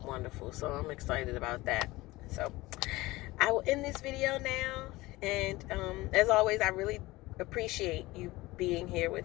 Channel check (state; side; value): quieter; right; 19.8 dB